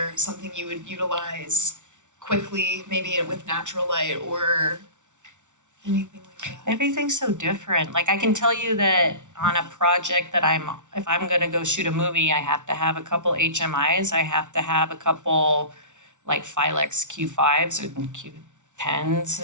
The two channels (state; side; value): late; left; 0.86 ms